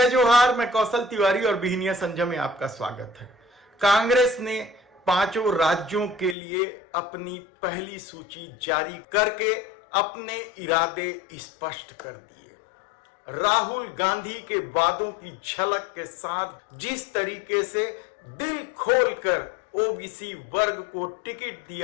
जोहार। मैं कौशल तिवारी और बिहनिया संजय में आपका स्वागत है। कांग्रेस ने 5 राज्यों के लिए अपनी पहली सूची जारी करके अपने इरादे स्पष्ट कर दिए। राहुल गांधी के वादों की झलक के साथ जिस तरीके से दिल खोलकर ओबीसी वर्ग को टिकट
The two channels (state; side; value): drops out; right; at 6.4 s